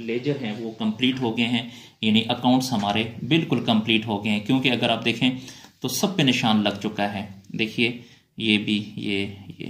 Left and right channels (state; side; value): identical; both; correlation 1.00